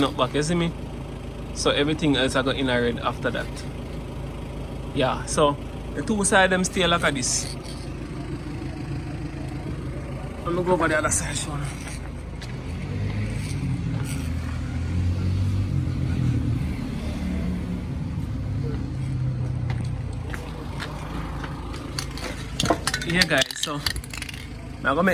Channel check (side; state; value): both; identical; correlation 1.00